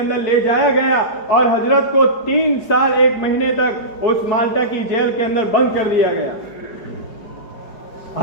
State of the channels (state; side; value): late; right; 4.8 ms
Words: لے جایا گیا اور حضرت کو 3 سال 1 مہینے تک اس مالٹا کی جیل کے اندر بند کر دیا گیا۔